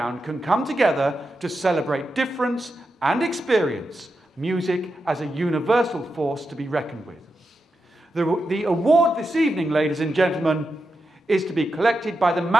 can come together to celebrate difference and experience music as a universal force to be reckoned with. The award this evening, ladies and gentlemen, is to be collected by the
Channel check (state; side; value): normal; both; correlation 0.88